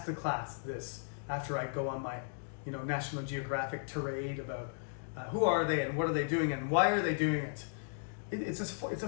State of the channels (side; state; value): right; silent; digital silence